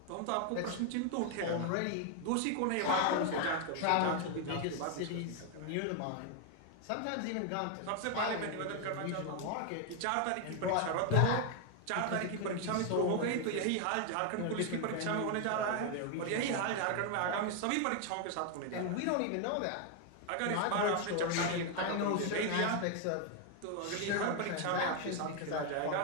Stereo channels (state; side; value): different; both; correlation 0.01